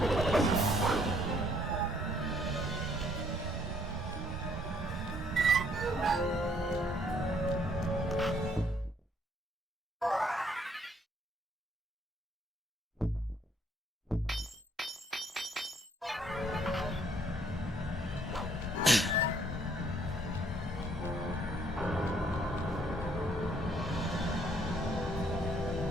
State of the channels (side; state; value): both; normal; correlation 0.66